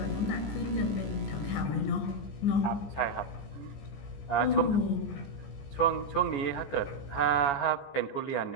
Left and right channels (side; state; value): right; late; 14 ms